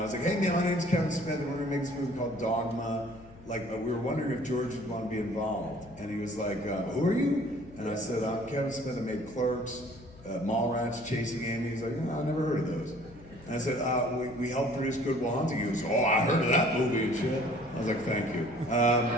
was like, hey man, my name's Kevin Smith, and we're gonna make this movie called Dogma. Like, we were wondering if George would want to be involved. And he was like, who are you? And I said, I'm Kevin Smith, I made Clerks, Mallrats, Chasing Amy. He's like, no, I never heard of those. And I said, we helped produce Good Will Hunting. He goes, oh, I heard of that movie and shit. I was like, thank you.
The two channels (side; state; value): left; noise; hum, 21 dB below the sound